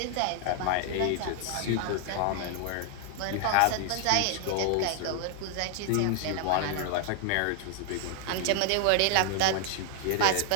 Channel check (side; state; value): both; different; correlation 0.00